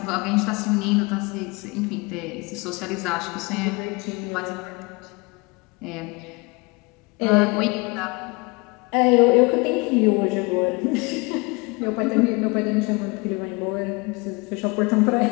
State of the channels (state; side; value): quieter; right; 27.2 dB